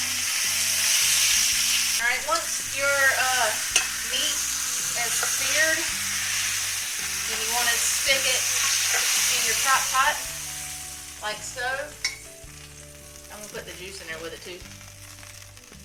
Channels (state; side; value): identical; both; correlation 1.00